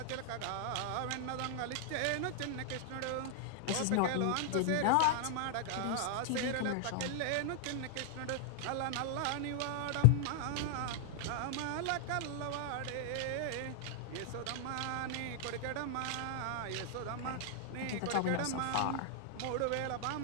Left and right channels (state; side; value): different; both; correlation 0.00